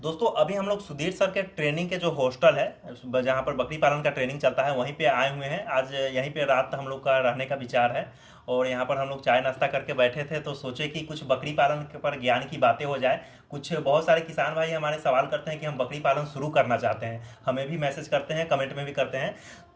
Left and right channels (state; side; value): identical; both; correlation 1.00